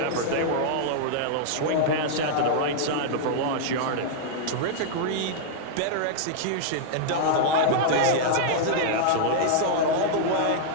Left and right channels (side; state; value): both; different; correlation -0.02